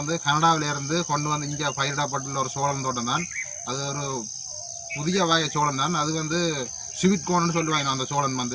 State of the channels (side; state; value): both; identical; correlation 1.00